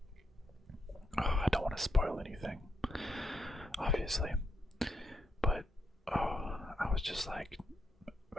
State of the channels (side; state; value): both; normal; correlation 0.81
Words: I don't want to spoil anything, obviously, but I was just like,